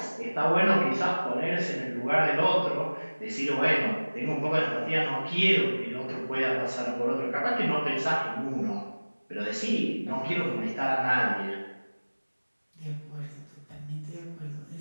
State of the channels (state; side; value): inverted; both; correlation -1.00